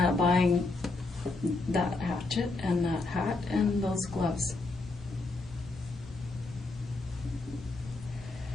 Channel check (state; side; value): quieter; right; 3.4 dB